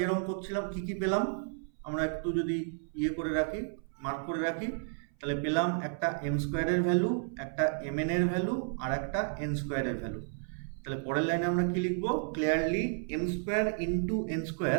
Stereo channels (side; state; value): left; silent; 56 dB below the other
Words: করছিলাম কি কি পেলাম আমরা একটু যদি করে রাখি, মার্ক করে রাখি, তাহলে পেলাম একটা এম স্কোয়ারের ভ্যালু, একটা এম এন এর ভ্যালু, আর একটা এন স্কোয়ারের ভ্যালু। তাহলে পরের লাইনে আমরা কি লিখবো? Clearly M square into N